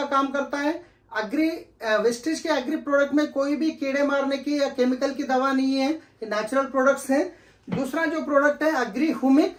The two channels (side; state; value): both; identical; correlation 1.00